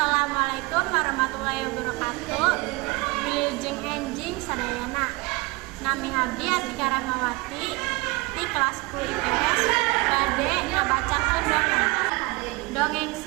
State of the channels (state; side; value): quieter; left; 24.0 dB